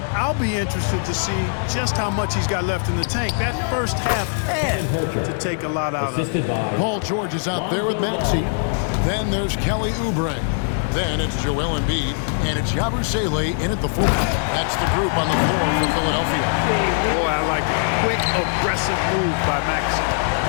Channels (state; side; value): silent; right; digital silence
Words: I'll be interested to see just how much he's got left in the tank. That first half had to take a lot out of it. Paul George is out there with Maxey. Then there's Kelly Oubre. Then it's Joel Embiid, and it's Buzelis in at the 4. That's the group on the floor for Philadelphia. Boy, I like it. Quick, aggressive move by Maxey.